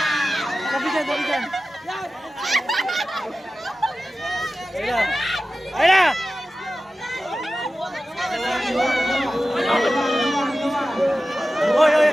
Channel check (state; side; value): normal; both; correlation 0.94